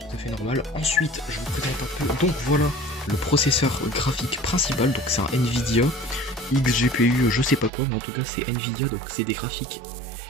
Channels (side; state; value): left; drops out; at 7.7 s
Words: à fait normal. Ensuite je vous présente un peu, donc voilà le processeur graphique principal, donc c'est un Nvidia XGPU je sais pas quoi, mais en tout cas c'est Nvidia, donc c'est des graphiques